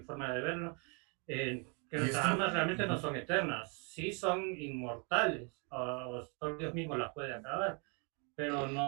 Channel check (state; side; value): quieter; left; 35.0 dB